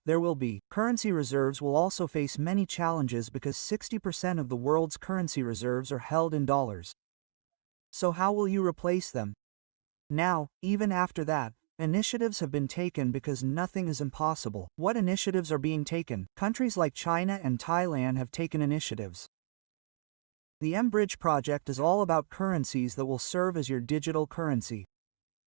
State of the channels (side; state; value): left; silent; digital silence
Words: there will be. Currency reserves will also face many challenges because 60% of the world's currency reserves are held in dollars. So how will you replace them? Now, even after that, initiatives have been taken because nothing is impossible. What initiatives are being taken? Countries like China and Thailand have taken initiatives. The M-Bridge project is all about currencies that will serve as your digital currency.